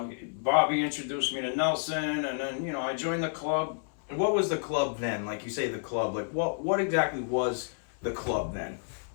Bobby introduced me to Nelson, and then I joined the club. And what was the club then? Like you say, the club. Like what exactly was the club then?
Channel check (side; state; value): right; silent; 58 dB below the other